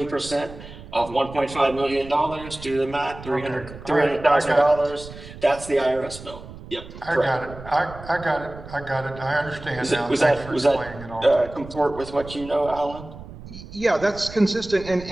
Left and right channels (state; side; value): noise; right; rumble, 15 dB below the sound